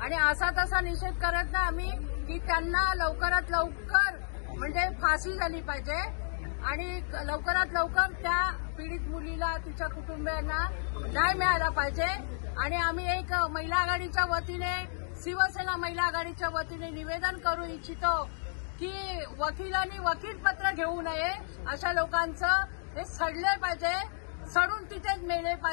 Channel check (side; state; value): right; silent; digital silence